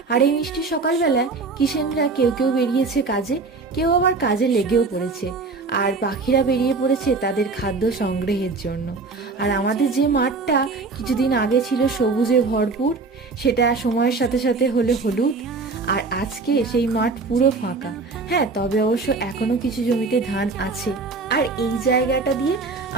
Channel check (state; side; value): quieter; left; 4.1 dB